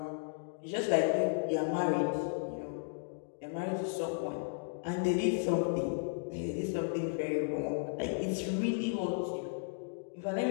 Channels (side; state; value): right; silent; digital silence